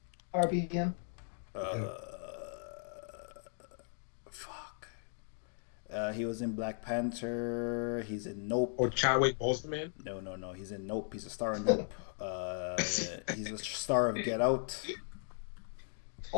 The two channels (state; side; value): silent; right; 53 dB below the other